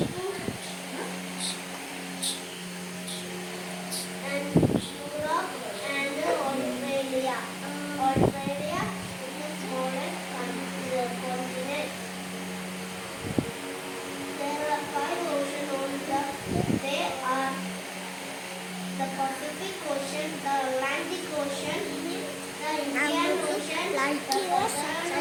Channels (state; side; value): identical; both; correlation 1.00